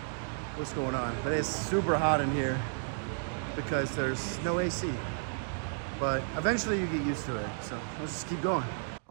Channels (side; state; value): left; silent; digital silence